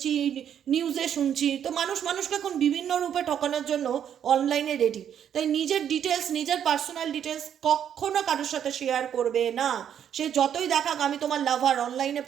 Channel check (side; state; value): left; quieter; 9.2 dB